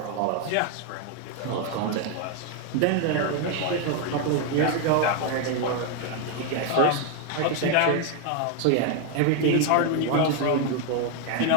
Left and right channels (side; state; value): both; different; correlation 0.01